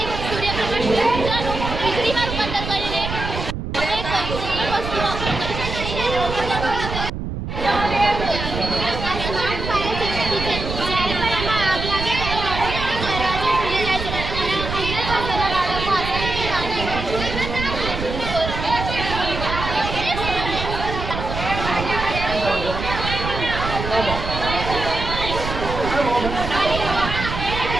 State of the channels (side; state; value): right; noise; rumble, 5 dB below the sound